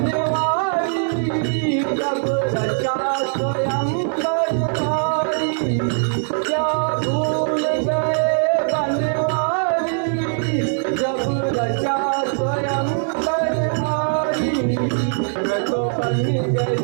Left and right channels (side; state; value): left; silent; digital silence